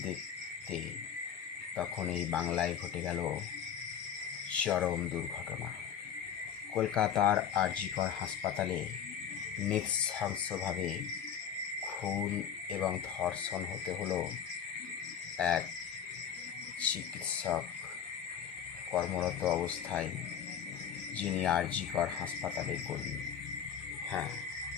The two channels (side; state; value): right; quieter; 8.4 dB